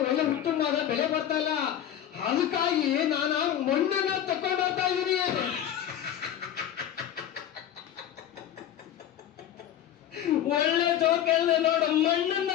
ಒಳ್ಳೆ ಉತ್ತಮವಾದ ಬೆಳೆ ಬರ್ತಾ ಇಲ್ಲ, ಅದಕ್ಕಾಗಿ ನಾನು ಮಣ್ಣನ್ನ ತಕೊಂಡು ಹೋಗ್ತಾ ಇದೀನಿ. ಒಳ್ಳೆ ಜೋಕ್ ಹೇಳ್ದೆ ನೋಡು. ಮಣ್ಣನ್ನ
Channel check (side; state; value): right; quieter; 10.6 dB